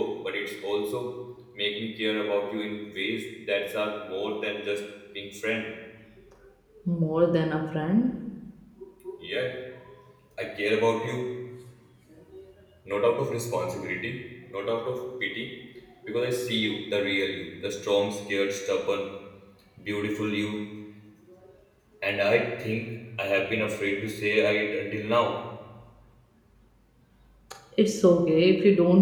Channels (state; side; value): identical; both; correlation 1.00